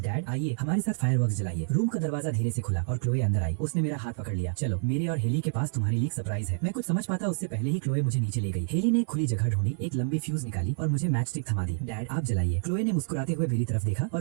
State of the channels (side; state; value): left; silent; 59 dB below the other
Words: आइए हमारे साथ फायरवर्क्स जलाइए। रूम का दरवाजा धीरे से खुला और क्लोए अंदर आई। उसने मेरा हाथ पकड़ लिया। चलो, मेरे और हेली के पास तुम्हारे लिए एक सरप्राइज है। मैं कुछ समझ पाता उससे पहले ही क्लोए मुझे नीचे ले गई। हेली ने खुली जगह ढूंढी, एक लंबी फ्यूज निकाली और मुझे मैच स्टिक थमा दी। डैड, आप जलाइए। क्लोए ने मुस्कुराते हुए मेरी तरफ देखा